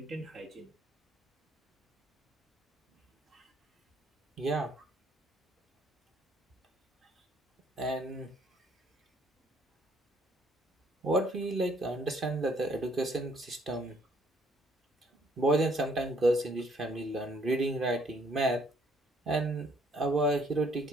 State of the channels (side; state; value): both; normal; correlation 0.65